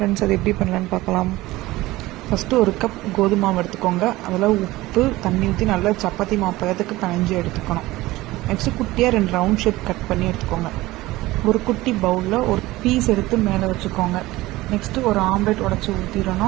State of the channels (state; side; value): quieter; left; 18.5 dB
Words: அது எப்படி பண்ணலான்னு பார்க்கலாம். ஃபஸ்ட்டு ஒரு கப் கோதுமை மாவு எடுத்துக்கோங்க. அதில் உப்பு தண்ணி ஊற்றி நல்லா சப்பாத்தி மாவு பதத்துக்கு பிணைஞ்சு எடுத்துக்கணும். நெக்ஸ்ட்டு குட்டியாக 2 ரவுண்ட் ஷேப் கட் பண்ணி எடுத்துக்கோங்க. ஒரு குட்டி பவுலில் ஒரு பீஸ் எடுத்து மேலே வச்சுக்கோங்க. நெக்ஸ்ட்டு ஒரு ஆம்லெட் உடச்சி